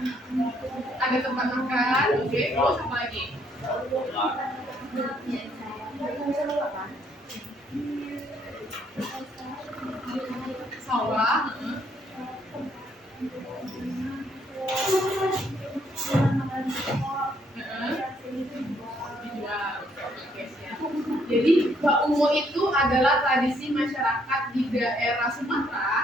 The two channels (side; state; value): both; normal; correlation 0.69